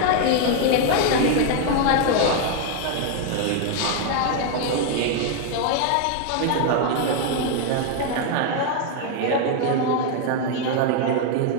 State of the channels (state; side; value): different; both; correlation 0.01